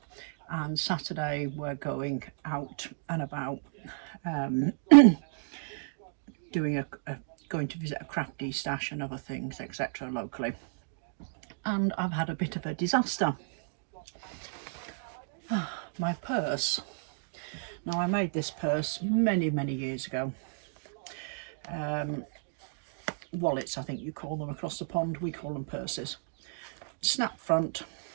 and Saturday we're going out and about going to visit a crafty stash and other things, etc. locally. And I've had a bit of a disaster. My purse. Now, I made this purse many years ago. Wallets, I think you call them across the pond. We call them purses. Snap front,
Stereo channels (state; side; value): silent; left; digital silence